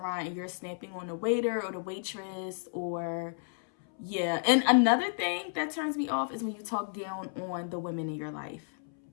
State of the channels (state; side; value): silent; right; 57 dB below the other